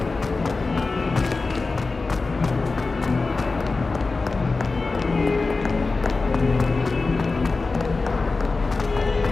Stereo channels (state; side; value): quieter; right; 3.8 dB